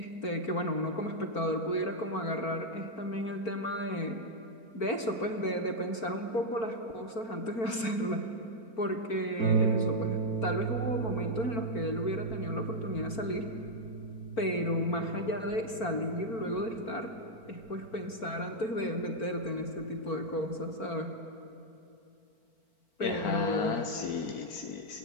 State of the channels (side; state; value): right; late; 4.4 ms